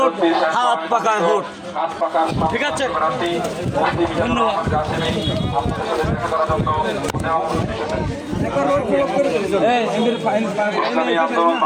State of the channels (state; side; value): identical; both; correlation 1.00